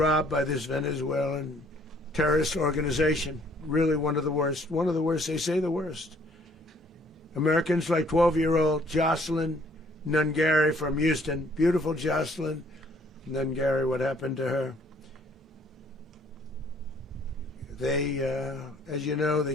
by this Venezuelan terrorist organization. Really one of the worst. One of the worst, they say the worst. Americans like 12-year-old Jocelyn Nungary from Houston. Beautiful Jocelyn Nungary, what happened to her? They, as you know, they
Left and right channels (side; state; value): both; normal; correlation 0.61